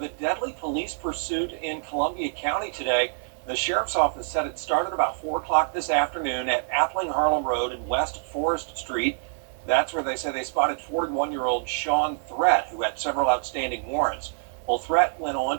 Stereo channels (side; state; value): left; silent; digital silence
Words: a deadly police pursuit in Columbia County today. The sheriff's office said it started about 4 o'clock this afternoon at Appling Harlem Road and West Forest Street. That's where they say they spotted 41-year-old Sean Threat, who had several outstanding warrants. Well, Threat went on